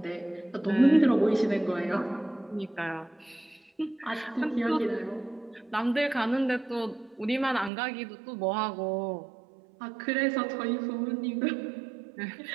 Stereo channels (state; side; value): drops out; left; at 7.7 s